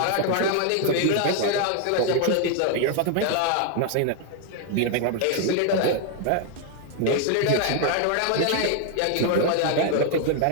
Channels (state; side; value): different; both; correlation 0.00